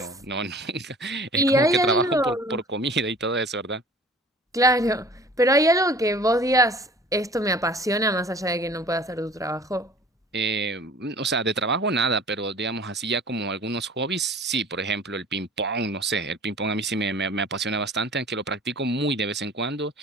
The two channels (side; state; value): both; normal; correlation 0.47